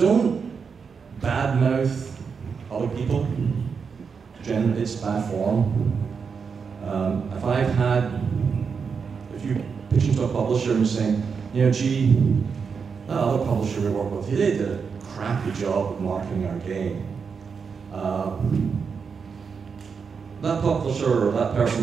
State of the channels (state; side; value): quieter; left; 5.8 dB